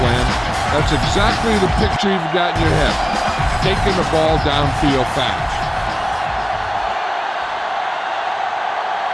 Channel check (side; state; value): both; identical; correlation 1.00